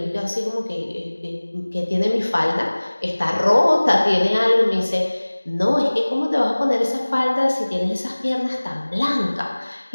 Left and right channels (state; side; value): inverted; both; correlation -1.00